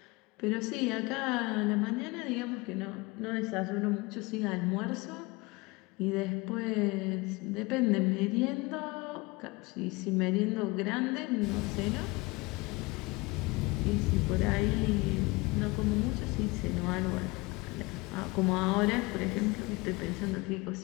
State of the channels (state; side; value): quieter; right; 24.0 dB